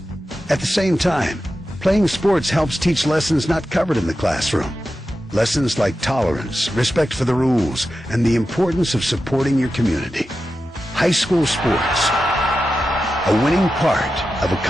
At the same time, playing sports helps teach lessons not covered in the classroom. Lessons like tolerance, respect for the rules, and the importance of supporting your community. High school sports, a winning part of a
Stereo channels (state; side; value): normal; both; correlation 0.91